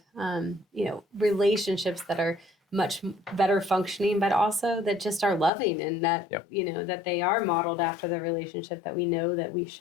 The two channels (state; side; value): drops out; right; at 5.5 s